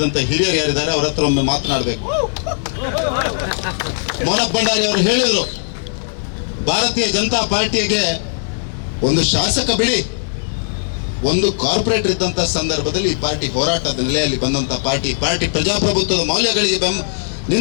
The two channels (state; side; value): silent; right; digital silence